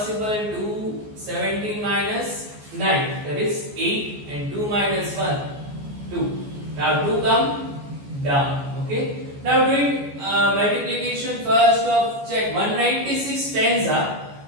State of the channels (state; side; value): late; left; 14 ms